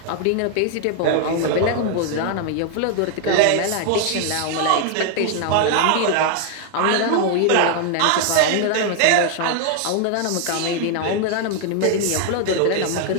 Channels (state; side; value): different; both; correlation 0.00